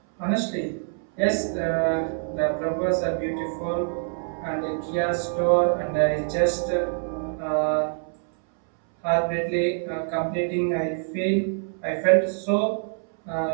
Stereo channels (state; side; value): silent; left; 62 dB below the other